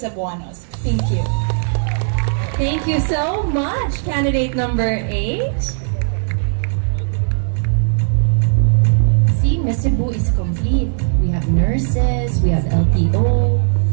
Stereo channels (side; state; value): left; silent; digital silence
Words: Thank you. Thank you so much, candidate number 8. See, Misabo is complete. We have nurses, we have LTO,